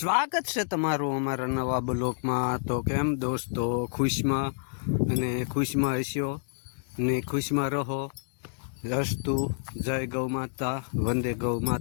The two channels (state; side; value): silent; right; digital silence